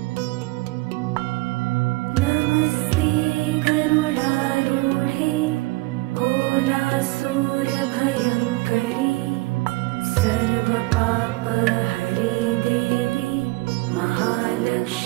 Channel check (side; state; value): left; quieter; 22.6 dB